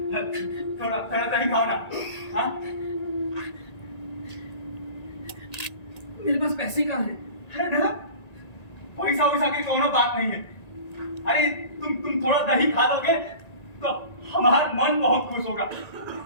थोड़ा थोड़ा दही खाओ ना। हाँ, मेरे पास पैसे कहाँ हैं? अरे दादा, पैसा वैसा की कोनो बात नहीं है। अरे तुम थोड़ा दही खा लोगे तो हमारा मन बहुत खुश होगा।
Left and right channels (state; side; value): late; right; 1.9 ms